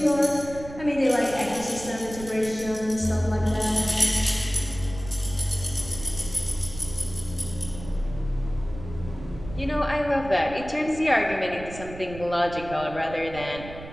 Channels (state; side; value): noise; right; rumble, 13 dB below the sound